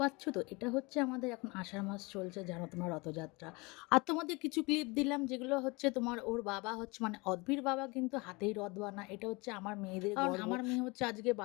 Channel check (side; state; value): right; quieter; 26.1 dB